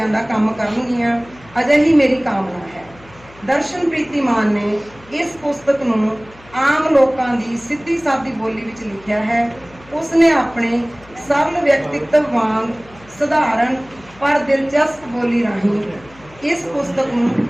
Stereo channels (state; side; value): noise; left; hum, 24 dB below the sound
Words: ਦਾ ਕੰਮ ਕਰਨਗੀਆਂ, ਅਜਿਹੀ ਮੇਰੀ ਕਾਮਨਾ ਹੈ। ਦਰਸ਼ਨ ਪ੍ਰੀਤੀਮਾਨ ਨੇ ਇਸ ਪੁਸਤਕ ਨੂੰ ਆਮ ਲੋਕਾਂ ਦੀ ਸਿੱਧੀ ਸਾਦੀ ਬੋਲੀ ਵਿੱਚ ਲਿਖਿਆ ਹੈ। ਉਸ ਨੇ ਆਪਣੇ ਸਰਲ ਵਿਅਕਤਿਤਵ ਵਾਂਗ ਸਧਾਰਨ ਪਰ ਦਿਲਚਸਪ ਬੋਲੀ ਰਾਹੀਂ ਇਸ ਪੁਸਤਕ ਨੂੰ